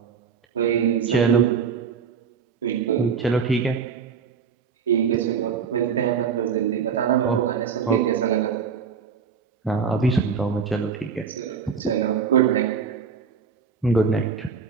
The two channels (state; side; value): quieter; left; 6.1 dB